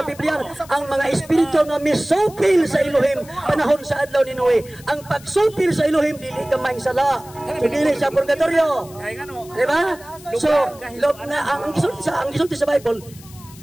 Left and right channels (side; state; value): left; noise; hiss, 21 dB below the sound